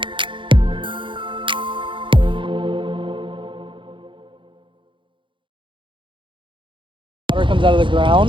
Water comes out of the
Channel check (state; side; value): late; left; 0.24 ms